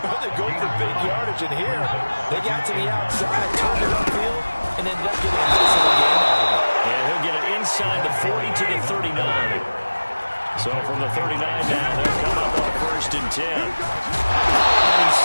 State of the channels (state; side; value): inverted; both; correlation -1.00